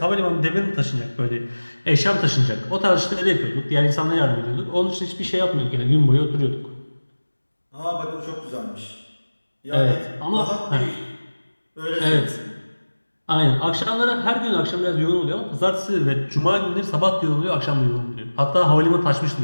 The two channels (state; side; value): inverted; both; correlation -1.00